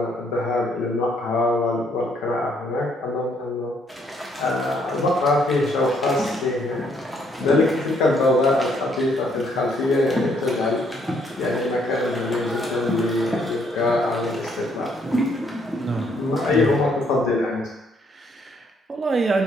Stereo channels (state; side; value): normal; both; correlation 0.69